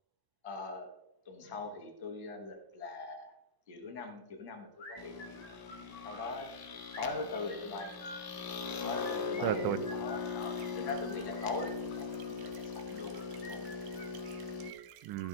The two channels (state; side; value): late; left; 1.0 ms